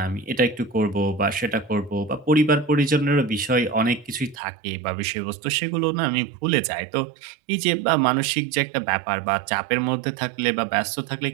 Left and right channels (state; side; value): drops out; left; at 4.4 s